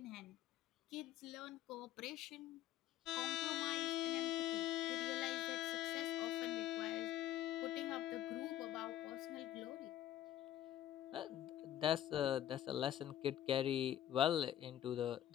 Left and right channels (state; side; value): quieter; right; 12.1 dB